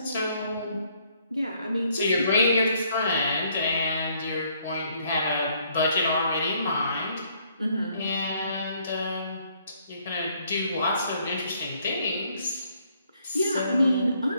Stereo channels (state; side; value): inverted; both; correlation -0.67